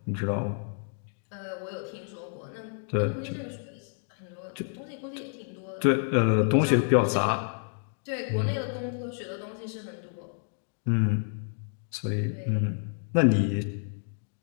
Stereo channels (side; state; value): right; silent; digital silence